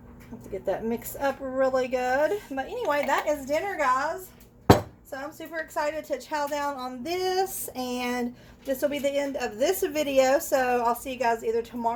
Have to get that mixed up really good. But anyway, that is dinner, guys. So I'm super excited to chow down on this, and this will be the end of this video. So I'll see you guys either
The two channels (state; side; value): identical; both; correlation 1.00